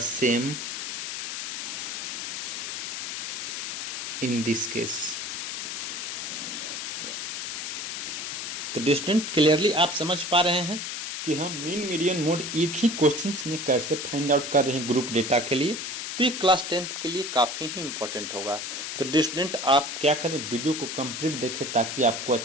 in this case। तो स्टूडेंट क्लियरली आप समझ पा रहे हैं कि हम मीन मीडियन मोड एक ही क्वेश्चंस में कैसे फाइंड आउट कर रहे हैं ग्रुप डेटा के लिए। तो ये क्लास 10th के लिए काफ़ी ही इंपॉर्टेंट होगा। तो स्टूडेंट आप क्या करें, वीडियो को कंप्लीट देखें ताकि आपको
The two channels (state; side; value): noise; left; hiss, 4 dB below the sound